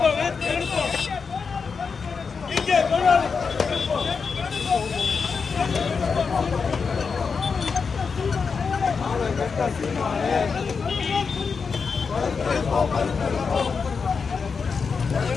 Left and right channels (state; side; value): quieter; right; 5.4 dB